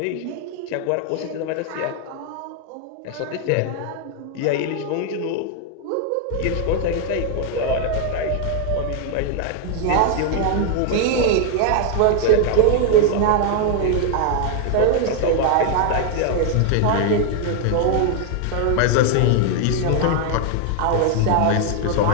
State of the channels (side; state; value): both; different; correlation 0.01